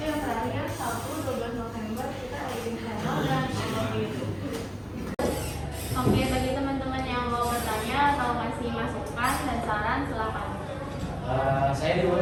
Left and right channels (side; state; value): both; identical; correlation 1.00